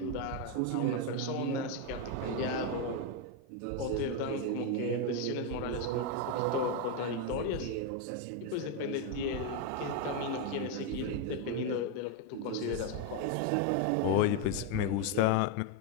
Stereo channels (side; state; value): both; different; correlation 0.02